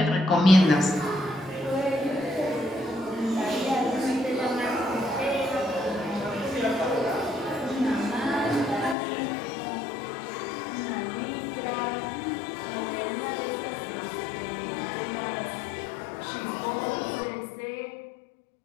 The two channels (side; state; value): right; drops out; at 9.0 s